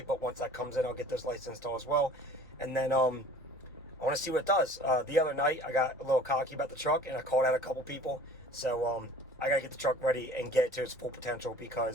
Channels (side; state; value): both; normal; correlation 0.47